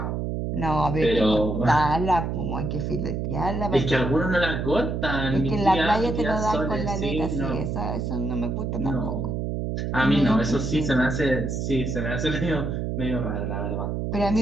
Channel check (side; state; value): right; noise; hum, 2 dB below the sound